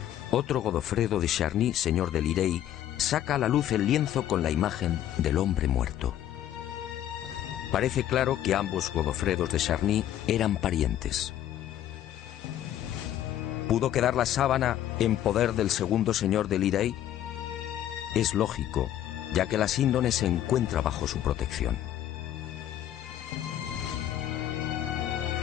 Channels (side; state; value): right; quieter; 11.6 dB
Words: otro Godofredo de Charny, señor de Lirey, saca a la luz el lienzo con la imagen del hombre muerto. Parece claro que ambos Godofredos de Charny eran parientes. ¿Pudo quedar la sábana en poder del segundo señor de Lirey? Es lógico, ya que la síndone se encuentra bajo su protección.